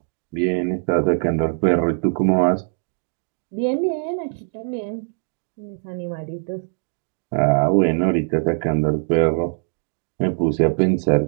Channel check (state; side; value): silent; left; digital silence